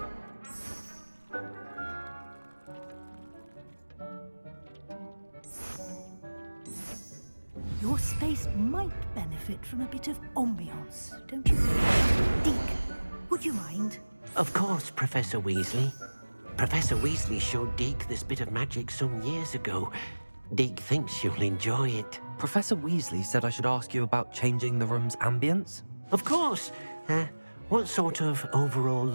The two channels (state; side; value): inverted; both; correlation -1.00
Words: Your space might benefit from a bit of ambiance, don't you think? Deke, would you mind? Of course, Professor Weasley. Professor Weasley showed Deke this bit of magic some years ago. Deke thinks you'll enjoy it. Professor Weasley said I should ask you about changing the room's ambience. Of course. What sort of overall